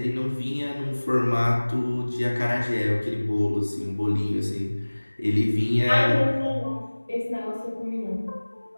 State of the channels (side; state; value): both; inverted; correlation -1.00